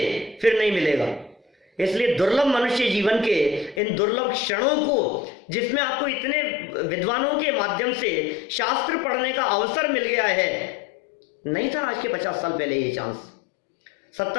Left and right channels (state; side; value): drops out; right; at 3.8 s